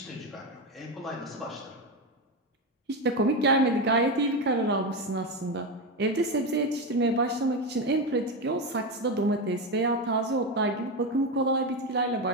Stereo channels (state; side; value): normal; both; correlation 0.14